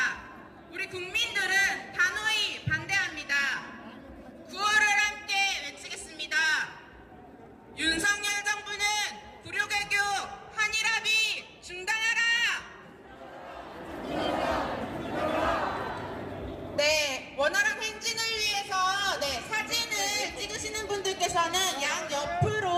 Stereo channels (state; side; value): identical; both; correlation 1.00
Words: 우리 국민들은 단호히 반대합니다. 구호를 함께 외치겠습니다. 윤석열 정부는 불효개교 한일합의 중단하라! 네, 원활한 행진을 위해서 사진을 찍으시는 분들께서는 양